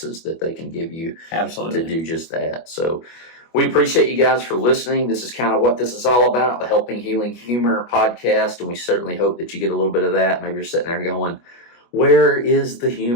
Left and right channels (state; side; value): late; right; 25 ms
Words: that they can give you Absolutely. To do just that. So we appreciate you guys for listening. This is kind of what this is all about, the Helping Healing Humor podcast, and we certainly hope that you get a little bit of that. Maybe you're sitting there going, where is the